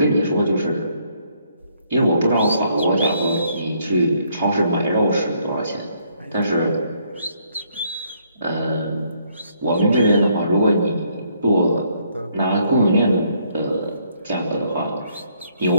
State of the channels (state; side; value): inverted; both; correlation -0.69